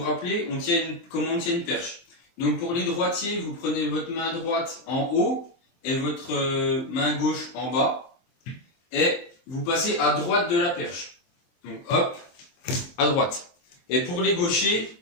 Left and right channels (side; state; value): right; late; 23 ms